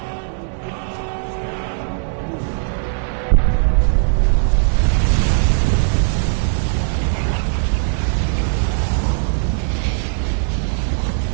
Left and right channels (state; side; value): silent; left; digital silence